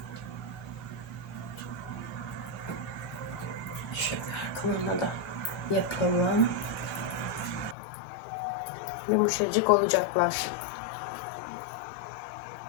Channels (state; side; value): drops out; right; at 7.8 s